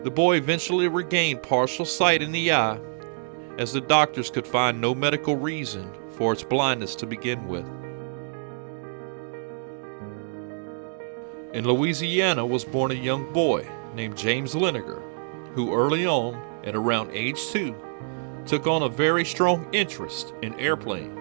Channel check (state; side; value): silent; left; digital silence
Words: The boy eventually regained partial sight in the eye, as the doctors could find no medical reason for its blindness to begin with. In Louisiana was born a young boy named James Liniger, who early on, at around age 2, took on a very strong interest in